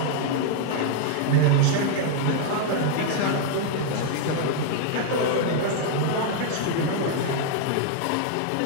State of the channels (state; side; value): different; both; correlation 0.00